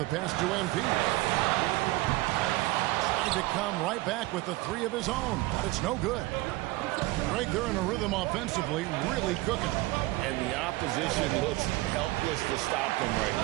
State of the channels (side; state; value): left; quieter; 20.0 dB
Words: pass to MP. Tried to come right back with the 3 of his own, but it's no good. Greg, they're in a rhythm offensively, really cooking. And the opposition looks helpless to stop them right